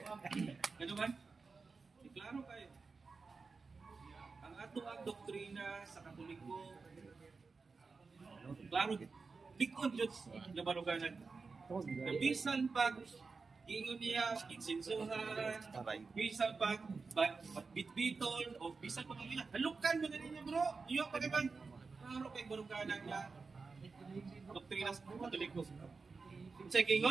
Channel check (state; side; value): quieter; left; 4.5 dB